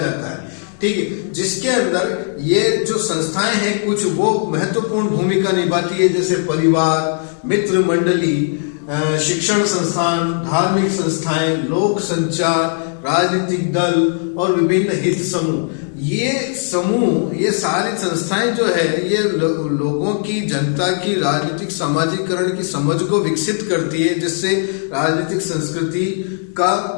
है, ठीक है। जिसके अंदर ये जो संस्थाएं हैं कुछ वो महत्वपूर्ण भूमिका निभाती है, जैसे परिवार, मित्र मंडली, शिक्षण संस्थान, धार्मिक संस्थाएं, लोक संचार, राजनीतिक दल और विभिन्न हित समूह। ये सारी संस्थाएं जो है ये लोगों की, जनता की राजनीतिक समाजीकरण की समझ को विकसित करती है, जिससे राजनीतिक संस्कृति का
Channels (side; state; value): right; silent; digital silence